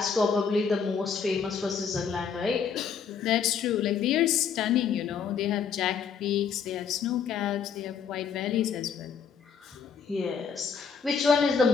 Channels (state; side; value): quieter; right; 6.6 dB